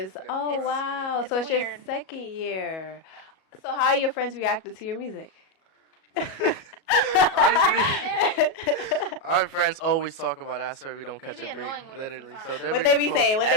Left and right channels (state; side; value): late; right; 37 ms